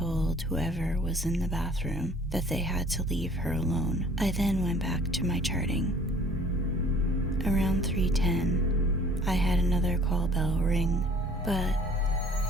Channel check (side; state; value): both; normal; correlation 0.53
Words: whoever was in the bathroom that they had to leave her alone. I then went back to my charting. Around 3:10, I had another call bell ring, but